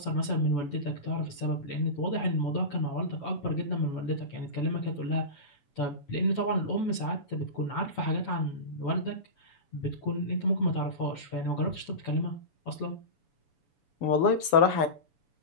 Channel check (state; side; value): late; right; 7.0 ms